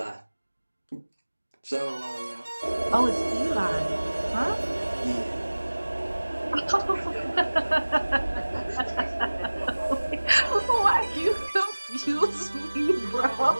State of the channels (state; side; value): inverted; both; correlation -1.00